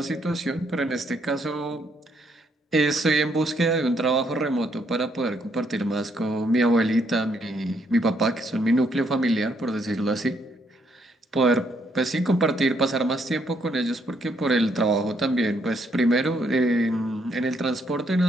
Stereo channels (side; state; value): both; normal; correlation 0.72